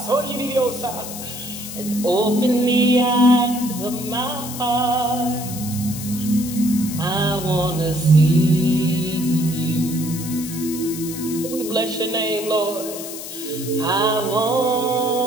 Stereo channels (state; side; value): noise; left; hiss, 10 dB below the sound